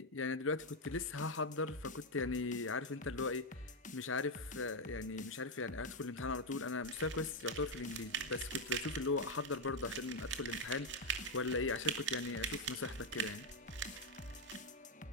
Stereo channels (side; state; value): both; normal; correlation 0.04